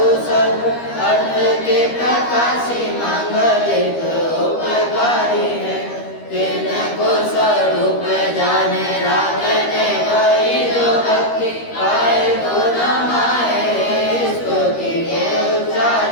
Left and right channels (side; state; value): right; late; 13 ms